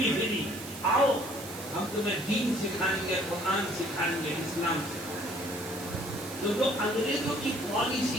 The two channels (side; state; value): right; noise; hiss, 13 dB below the sound